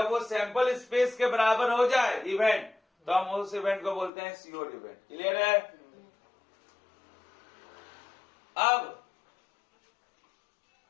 वो सैंपल स्पेस के बराबर हो जाए इवेंट, तो हम उस इवेंट को बोलते हैं सियोर इवेंट। क्लियर है? अब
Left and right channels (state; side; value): drops out; right; at 4.1 s